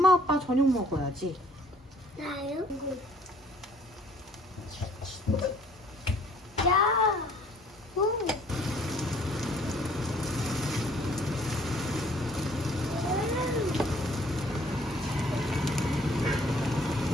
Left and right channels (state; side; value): normal; both; correlation 0.58